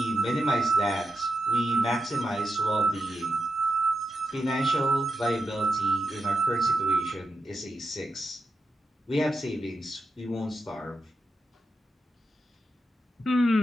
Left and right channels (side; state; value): both; normal; correlation 0.87